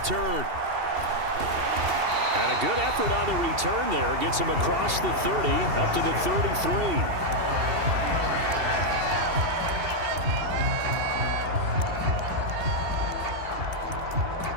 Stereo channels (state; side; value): late; left; 2.7 ms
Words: And a good effort on the return there. Gets him across the 30, up to the 33.